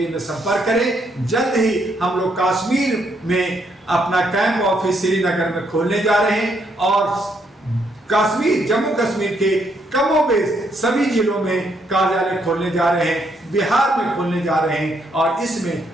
में संपर्क करें। जल्द ही हम लोग कश्मीर में अपना कैंप ऑफिस श्रीनगर में खोलने जा रहे हैं, और कश्मीर, जम्मू कश्मीर के कमोबेश सभी जिलों में कार्यालय खोलने जा रहे हैं, बिहार में खोलने जा रहे हैं, और इसमें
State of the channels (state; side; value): normal; both; correlation 0.74